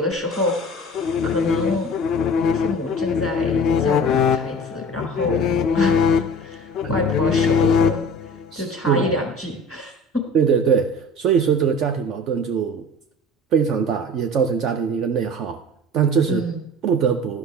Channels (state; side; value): normal; both; correlation 0.40